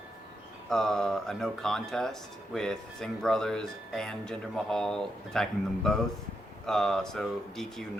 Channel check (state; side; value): normal; both; correlation 0.82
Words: a no contest with Singh Brothers and Jinder Mahal attacking them both. So DQ,